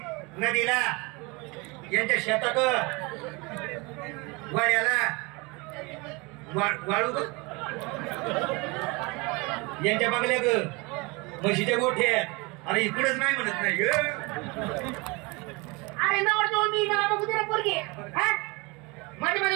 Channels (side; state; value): left; quieter; 26.8 dB